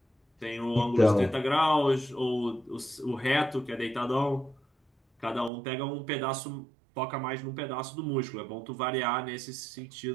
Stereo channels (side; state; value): left; drops out; at 5.5 s